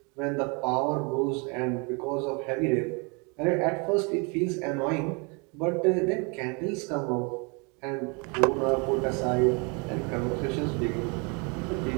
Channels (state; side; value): quieter; left; 32.5 dB